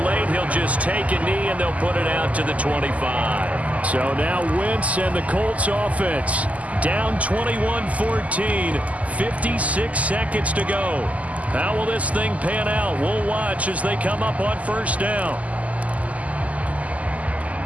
late, he'll just take a knee and they'll put it out to the 25. So now Wentz and the Colts offense down 21-14, 56 seconds to go. How will this thing pan out? We'll watch as they come up on 1st down.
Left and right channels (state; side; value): late; left; 0.072 ms